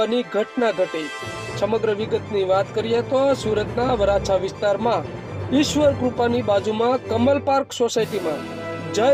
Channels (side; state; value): both; identical; correlation 1.00